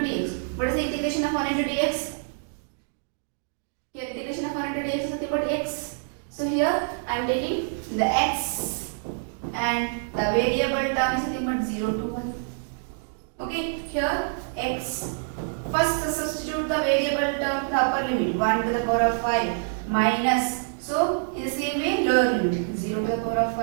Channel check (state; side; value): silent; left; digital silence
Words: dx. What is the integration of 1 into dx? Here integration of 1 into dx is nothing but x. So here I am taking the x and the variable term is nothing but 0 to 1. Okay, here x. First substitute the variable term to the upper limit, 1 to the power of 5 minus. So in the same way lower limit, 0 to the power of